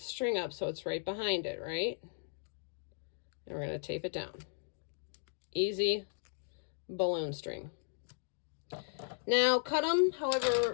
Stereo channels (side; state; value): right; silent; digital silence